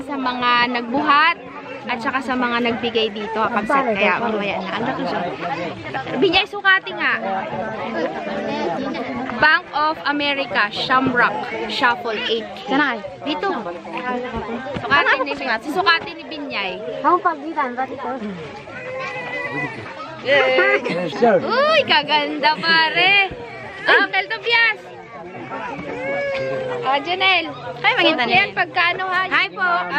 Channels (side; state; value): both; identical; correlation 1.00